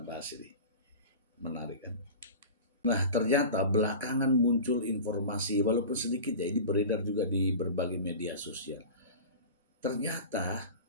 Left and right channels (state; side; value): inverted; both; correlation -0.33